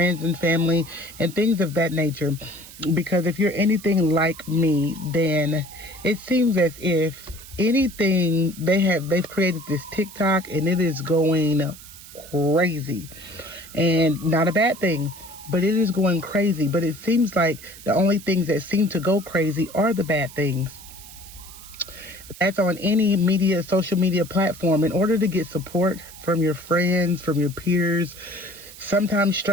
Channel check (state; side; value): noise; right; hiss, 17 dB below the sound